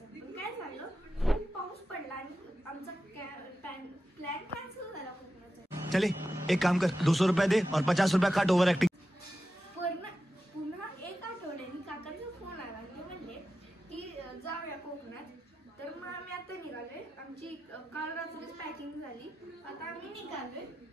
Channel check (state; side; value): normal; both; correlation 0.91